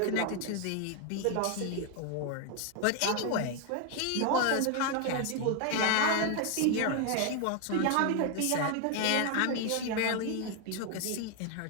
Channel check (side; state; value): both; different; correlation 0.01